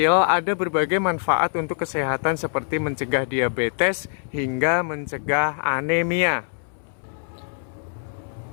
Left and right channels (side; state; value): right; silent; 63 dB below the other